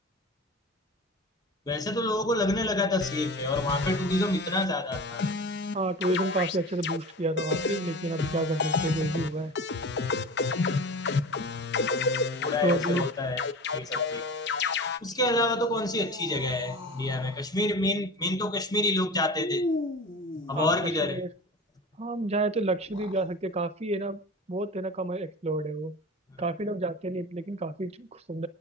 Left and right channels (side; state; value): both; normal; correlation 0.34